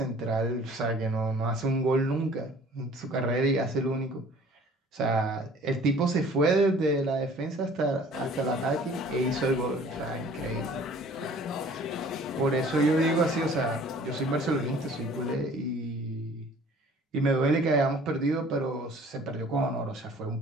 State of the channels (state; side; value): normal; both; correlation 0.51